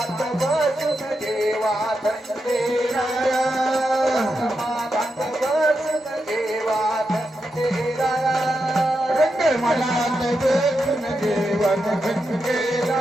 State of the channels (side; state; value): both; normal; correlation 0.86